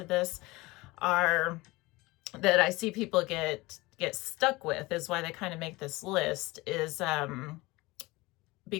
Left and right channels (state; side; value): quieter; right; 21.8 dB